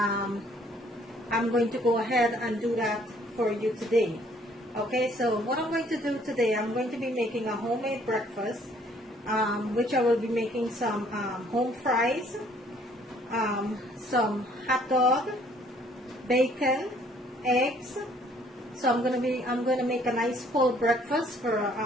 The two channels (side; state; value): both; normal; correlation 0.61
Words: going to go ahead and do that for you today. Okay, so what I'm going to do today, I'm going to be making a homemade breakfast, which I will be making some home fries, some hot dog, bacon, eggs. So I'm going to make a nice full breakfast